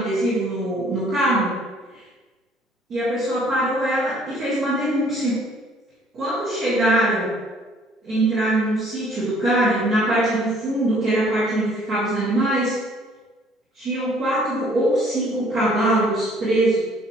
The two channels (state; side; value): normal; both; correlation 0.59